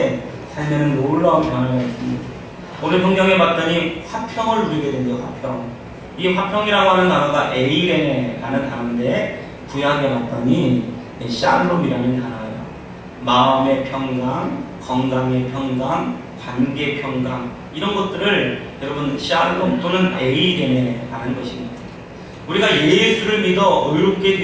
삶에는 놀라운 변화가 있습니다. 오늘 성경에 봤더니 화평을 누리게 된대요. 화평. 이 화평이라고 하는 단어가 에이레네라는 단어인데 구약에 봤더니 샬롬이라는 단어예요. 마음의 평강, 건강의 평강, 관계 평강 이런 것들을 여러분 샬롬 또는 에이레네라는 것입니다. 우리가 예수를 믿어 의롭게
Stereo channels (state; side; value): identical; both; correlation 1.00